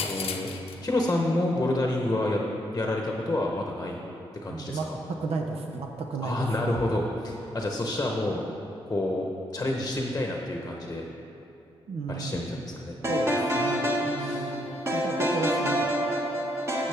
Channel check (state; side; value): normal; both; correlation 0.75